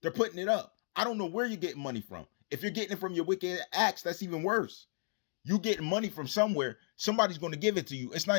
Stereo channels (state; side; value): silent; right; digital silence